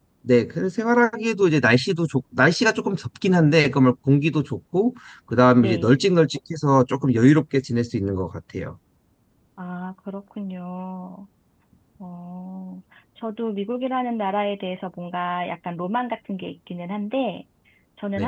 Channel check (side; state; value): both; identical; correlation 1.00